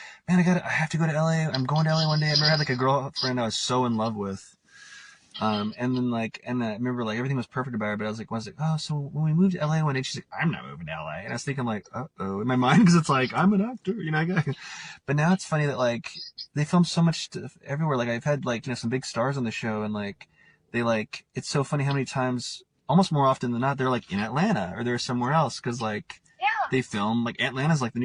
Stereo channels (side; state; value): both; identical; correlation 1.00